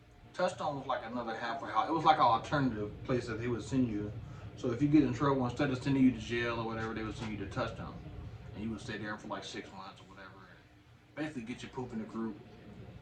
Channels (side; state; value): both; identical; correlation 1.00